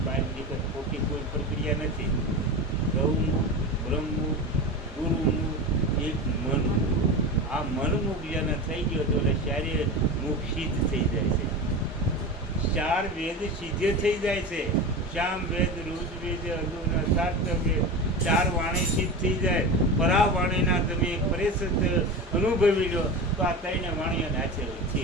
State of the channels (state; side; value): normal; both; correlation 0.26